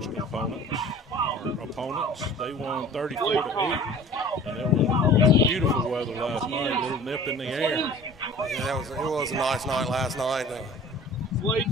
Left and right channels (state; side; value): normal; both; correlation 0.44